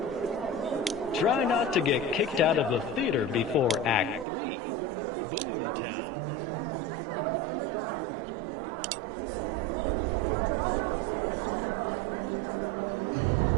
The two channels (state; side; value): drops out; left; at 4.2 s